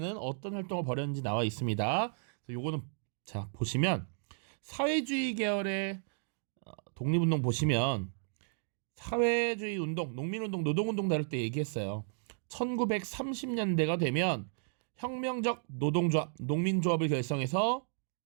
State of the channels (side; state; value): left; silent; digital silence